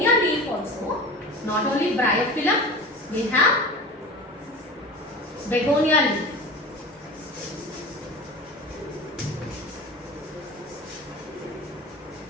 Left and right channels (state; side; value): normal; both; correlation 0.33